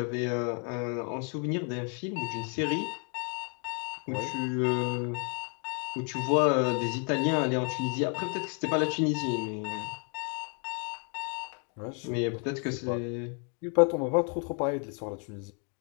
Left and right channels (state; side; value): quieter; right; 39.4 dB